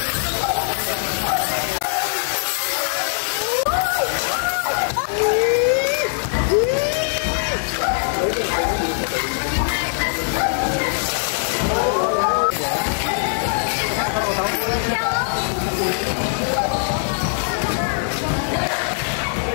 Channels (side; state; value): right; silent; digital silence